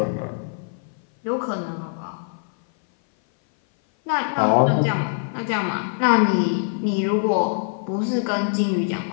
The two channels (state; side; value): silent; right; 58 dB below the other